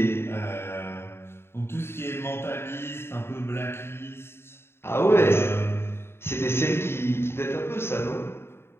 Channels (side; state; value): right; late; 0.12 ms